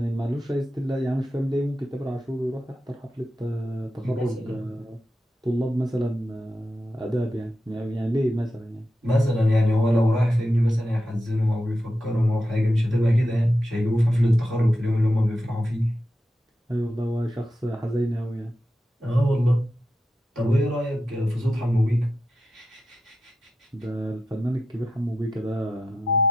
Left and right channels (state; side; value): normal; both; correlation 0.88